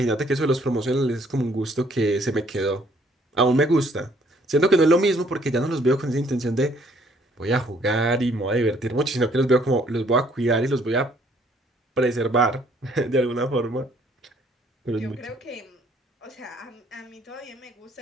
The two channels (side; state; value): both; normal; correlation 0.64